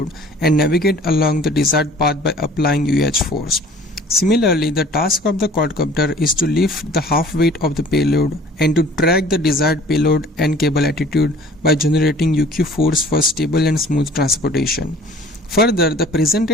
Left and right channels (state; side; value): normal; both; correlation 0.50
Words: and navigate along the desired path by applying UH force. Similarly, the task of the quadcopter is to lift the half weight of the payload and to track the desired payload and cable attitude by generating UQ force for stable and smooth transportation. Further, the